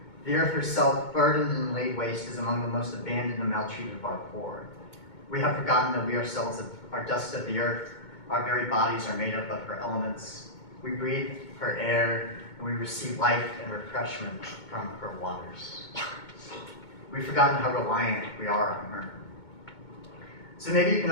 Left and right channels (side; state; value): right; late; 2.2 ms